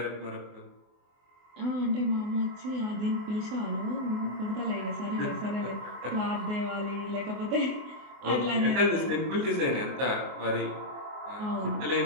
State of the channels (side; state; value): left; late; 24 ms